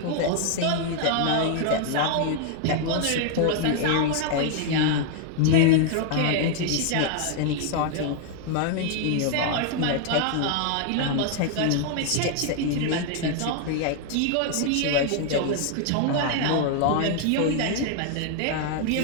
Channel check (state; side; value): different; both; correlation 0.00